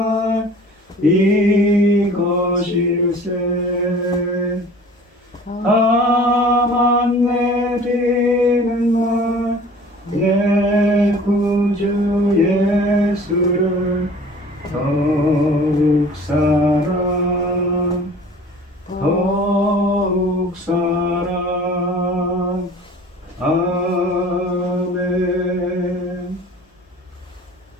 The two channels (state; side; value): normal; both; correlation 0.46